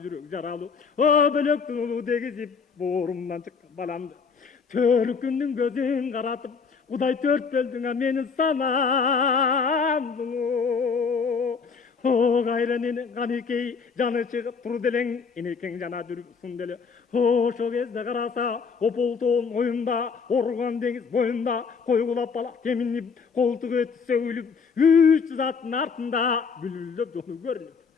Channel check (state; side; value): quieter; right; 5.5 dB